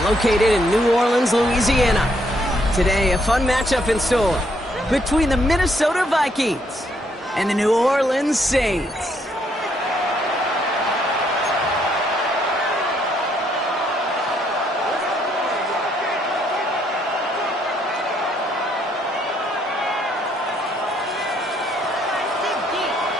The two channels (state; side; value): normal; both; correlation 0.71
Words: located in New Orleans, Louisiana. Today, a fun matchup in store between the Minnesota Vikings and the New Orleans Saints.